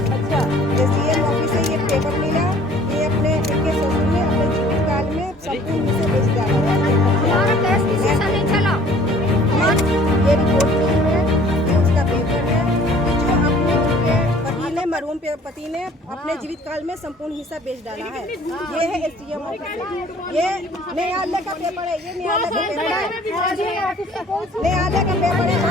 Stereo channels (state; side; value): normal; both; correlation 0.53